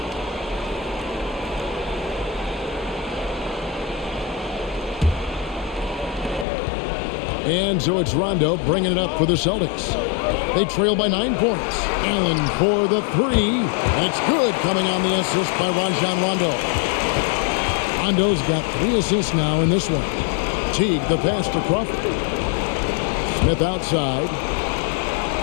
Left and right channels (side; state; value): right; drops out; at 6.5 s